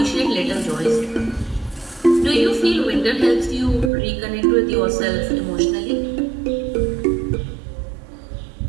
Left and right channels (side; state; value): left; drops out; at 3.9 s